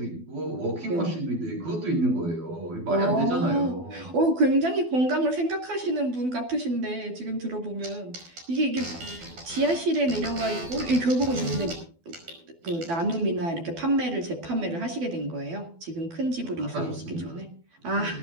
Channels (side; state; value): left; late; 12 ms